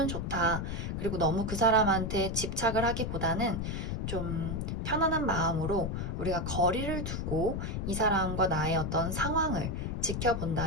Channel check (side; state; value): left; noise; rumble, 2 dB below the sound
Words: 좋다. 그리고 너무 그 사람한테 집착을 하기보다는 좀 편안한 마음으로 우리가 거리를 두고 이 사람과 나의 어떤 상황을